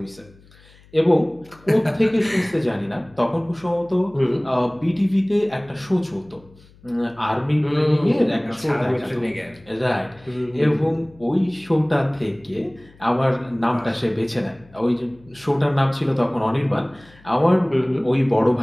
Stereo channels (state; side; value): noise; left; hum, 26 dB below the sound